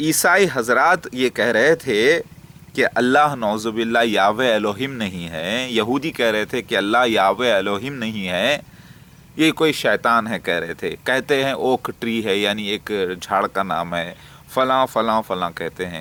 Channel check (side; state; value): both; identical; correlation 1.00